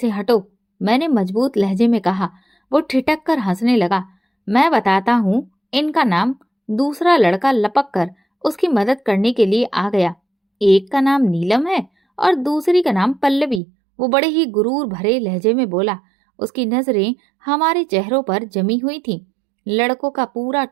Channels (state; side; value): drops out; left; at 13.6 s